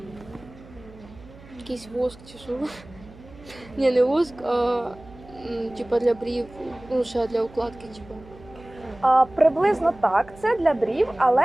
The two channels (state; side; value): noise; right; hum, 21 dB below the sound